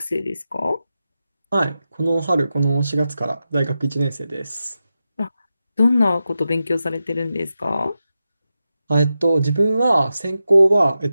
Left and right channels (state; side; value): inverted; both; correlation -0.90